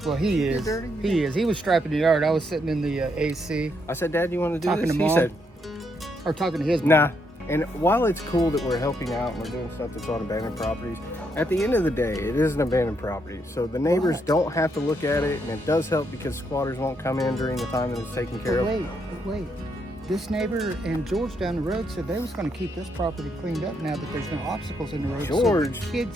Well, he is. dirty? He is. He was striping the yard. I was sitting in the AC I said, Dad, you want to do Talking this? to He Mom. said, or talking to his mom. nah. And while it's cool that we're helping out and we're doing stuff that's on abandoned properties, at the end of the day, it is an abandoned property. So the neighbors Right. don't have to look at it, and it does help because squatters won't come in during the time that it's taken care But of. wait. this neighbor and George down the road said they was going to keep this property cleaned up now that there's no obstacles in the road. George- so the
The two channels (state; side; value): normal; both; correlation 0.77